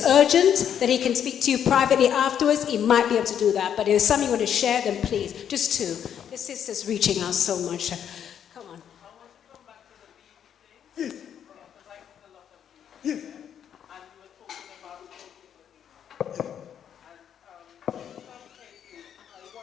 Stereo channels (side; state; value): right; quieter; 9.0 dB